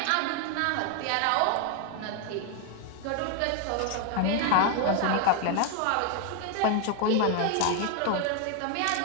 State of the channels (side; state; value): both; different; correlation 0.01